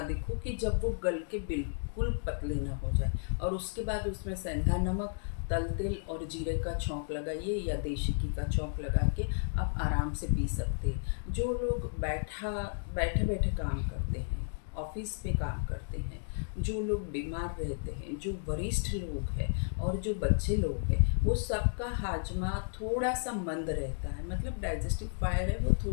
देखो कि जब वो गल के बिल्कुल पतले ना हो जाए, और उसके बाद उसमें सेंधा नमक, तल तेल और जीरे का छौंक लगाइए या देशी घी का छौंक लगा के आप आराम से पी सकते हैं। जो लोग बैठे बैठे काम करते हैं, ऑफिस पे काम करते हैं, जो लोग बीमार रहते हैं, जो वरिष्ठ लोग हैं और जो बच्चे लोग हैं, वो सबका हाजमा थोड़ा सा मंद रहता है। मतलब डाइजेस्टिव फायर है वो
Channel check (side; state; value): right; silent; digital silence